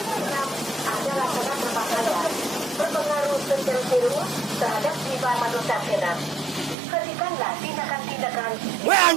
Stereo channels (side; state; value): left; drops out; at 6.8 s